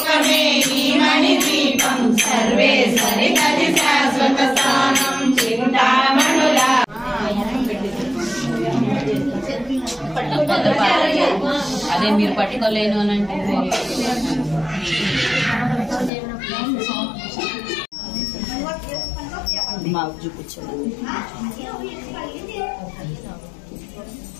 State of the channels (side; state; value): right; drops out; at 16.1 s